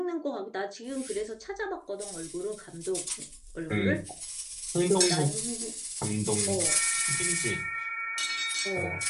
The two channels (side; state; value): both; identical; correlation 1.00